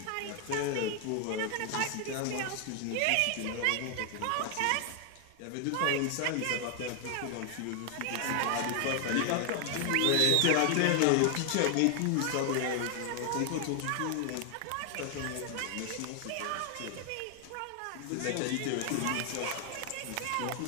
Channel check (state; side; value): different; both; correlation 0.00